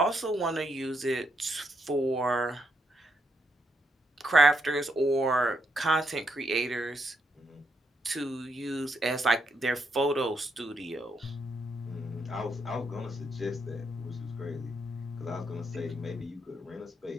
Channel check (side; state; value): both; normal; correlation 0.78